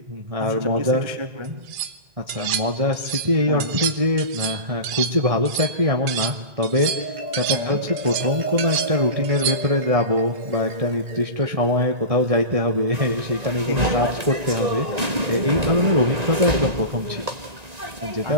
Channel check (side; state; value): left; late; 1.9 ms